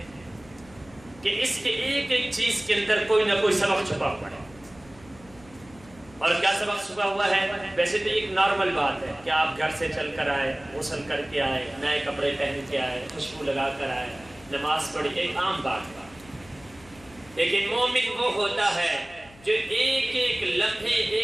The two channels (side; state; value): left; noise; hum, 24 dB below the sound